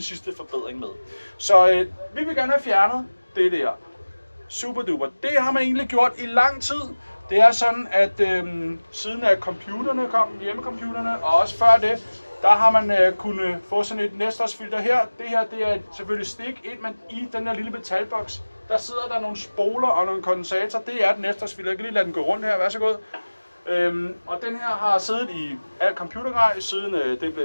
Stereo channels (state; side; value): inverted; both; correlation -1.00